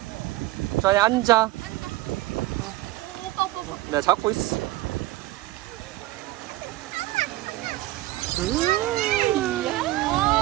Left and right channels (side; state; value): left; quieter; 17.6 dB